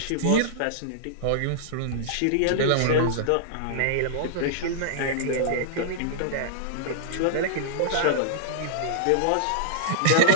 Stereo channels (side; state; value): both; different; correlation -0.01